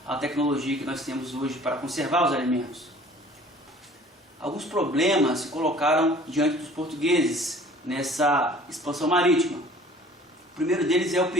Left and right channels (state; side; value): normal; both; correlation 0.50